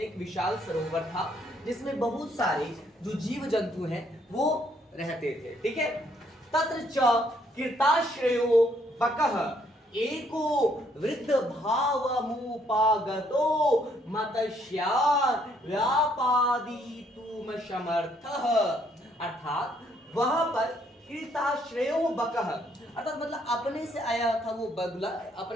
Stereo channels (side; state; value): both; normal; correlation 0.69